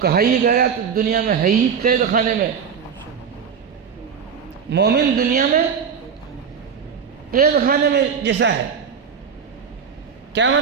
ہی گیا تو دنیا میں ہے ہی قید خانے میں. مومن دنیا میں قید خانے میں جیسا ہے. کیا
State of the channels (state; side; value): quieter; left; 6.8 dB